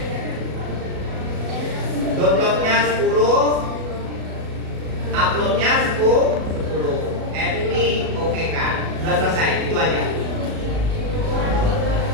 Downloadnya 10, uploadnya 10 M. Ini oke kan? Sudah selesai, itu aja.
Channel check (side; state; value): left; late; 37 ms